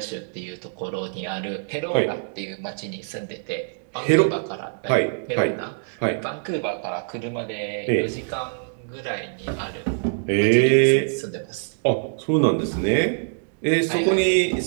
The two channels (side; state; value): left; silent; digital silence